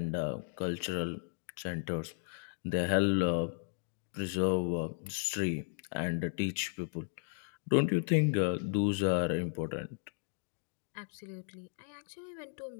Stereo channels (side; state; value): right; silent; digital silence